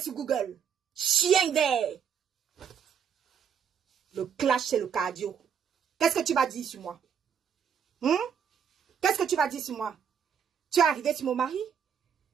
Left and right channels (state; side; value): quieter; left; 7.6 dB